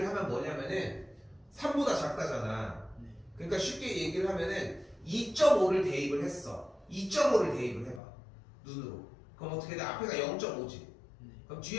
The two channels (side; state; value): right; drops out; at 8.0 s